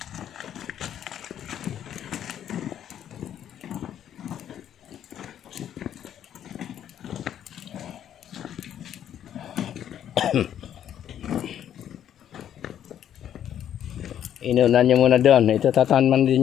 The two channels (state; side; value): quieter; right; 10.2 dB